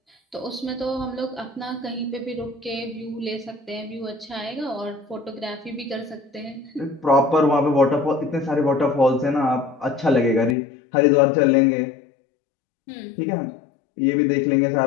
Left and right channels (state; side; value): drops out; right; at 10.6 s